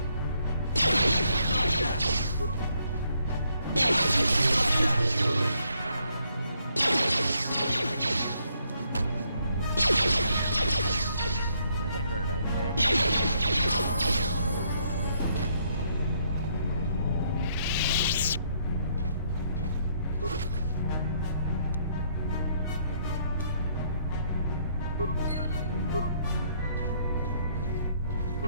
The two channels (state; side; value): inverted; both; correlation -0.71